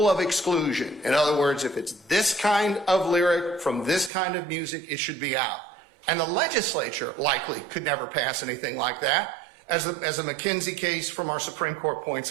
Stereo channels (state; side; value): drops out; left; at 4.1 s